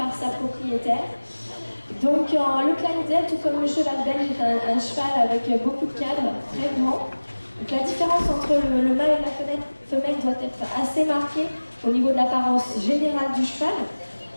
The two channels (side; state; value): both; inverted; correlation -1.00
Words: sa propriétaire. Donc le Clydesdale, tout comme le cheval belge, est un cheval avec beaucoup de cadres, très grand. Donc la différence entre le mâle et la femelle doit être assez marquée au niveau de l'apparence générale du cheval.